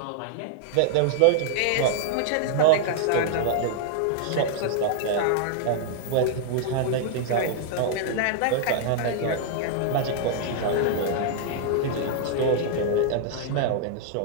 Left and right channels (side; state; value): both; different; correlation -0.01